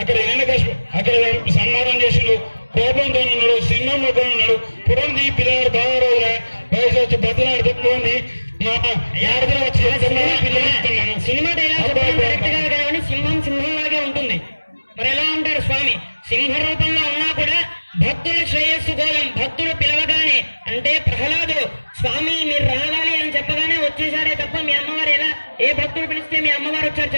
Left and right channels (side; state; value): both; inverted; correlation -1.00